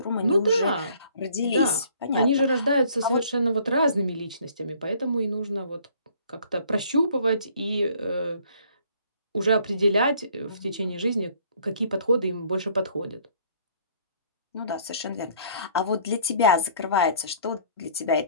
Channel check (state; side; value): inverted; both; correlation -0.58